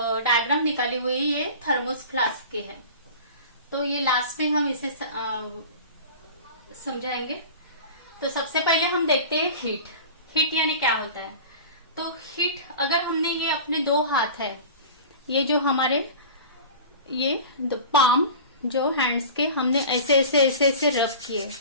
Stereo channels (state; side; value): inverted; both; correlation -0.36